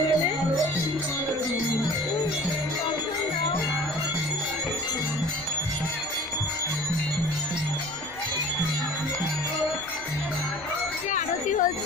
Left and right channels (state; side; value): noise; left; rumble, 23 dB below the sound